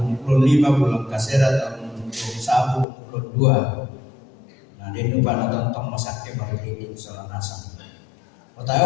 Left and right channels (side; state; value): right; drops out; at 2.9 s